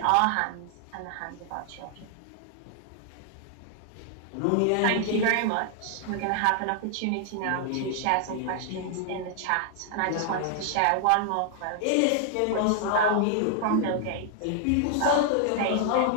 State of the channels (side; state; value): both; different; correlation 0.00